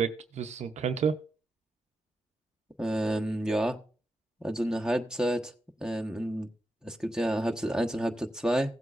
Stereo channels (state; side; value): normal; both; correlation 0.87